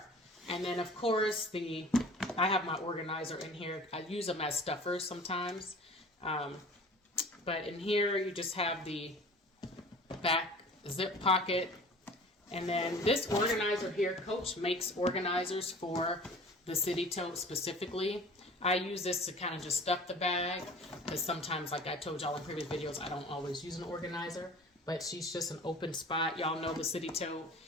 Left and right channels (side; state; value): both; normal; correlation 0.43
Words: And then, of course, I have my organizer in here. I use them as stuffers sometimes. But in here, you just have the back zip pocket. And then this organizer here, Coach makes organizers for the City Tote specifically. I use this to kind of just stuff the bag. Because sometimes, like I told y'all in previous videos, I don't always use an organizer. But she's just an open spot. Y'all know the City Tote.